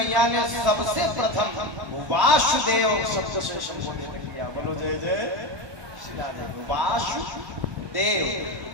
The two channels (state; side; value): late; left; 1.2 ms